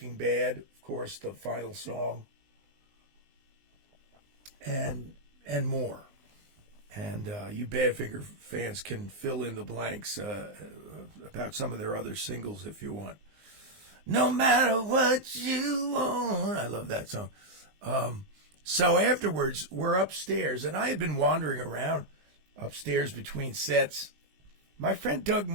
Bad, of course, the final song, and more. And you Badfinger fans can fill in the blanks about some of their other singles if you want. No matter what you want. I love that song. So afterwards, we're upstairs, and I had been wandering around upstairs between sets. My friend Doug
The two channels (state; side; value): late; left; 19 ms